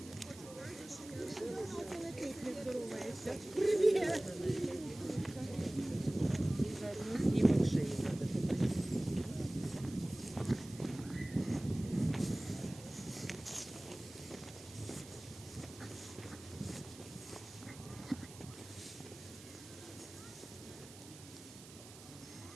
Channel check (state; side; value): noise; right; hiss, 17 dB below the sound